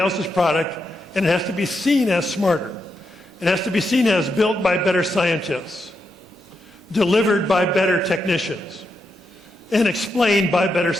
product, and it has to be seen as smarter. It has to be seen as built by better scientists, delivered by better technicians, and explained by better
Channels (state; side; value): normal; both; correlation 0.83